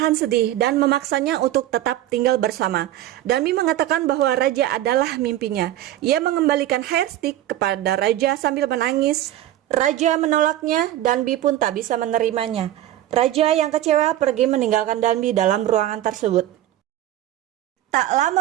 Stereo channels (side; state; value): left; quieter; 13.4 dB